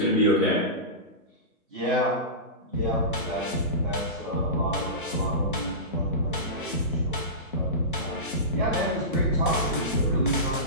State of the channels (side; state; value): both; normal; correlation -0.19